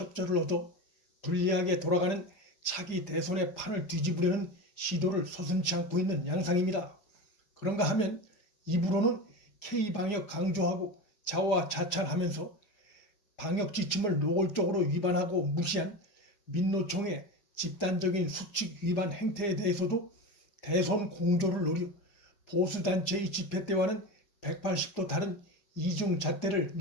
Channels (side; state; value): right; late; 4.9 ms